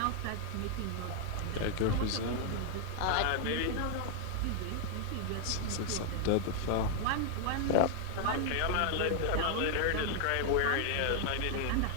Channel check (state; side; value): different; both; correlation 0.00